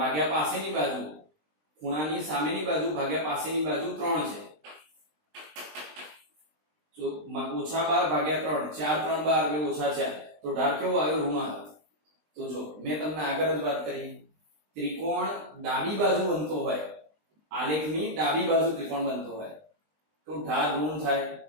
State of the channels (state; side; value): late; left; 20 ms